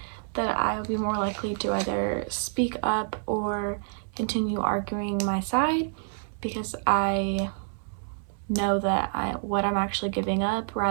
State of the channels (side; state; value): left; silent; 59 dB below the other